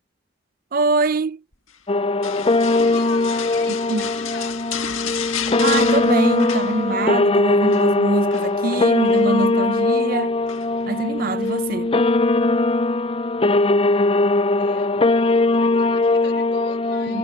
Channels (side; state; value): both; normal; correlation 0.42